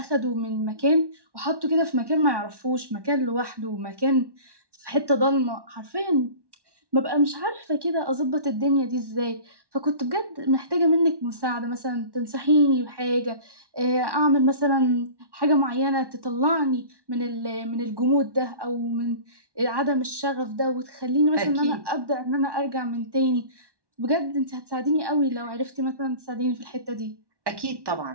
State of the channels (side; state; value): left; late; 1.1 ms